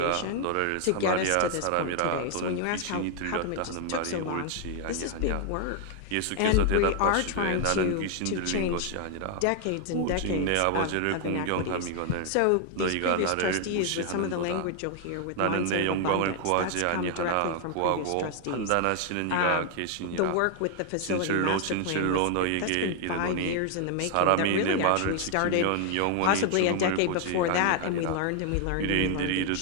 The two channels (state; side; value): different; both; correlation 0.00